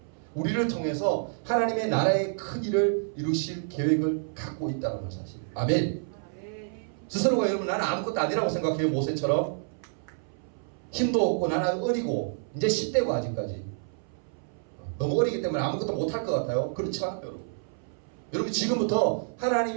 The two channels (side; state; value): left; silent; 59 dB below the other